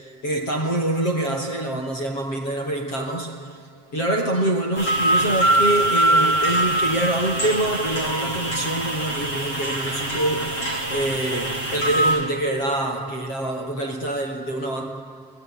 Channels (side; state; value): right; late; 7.5 ms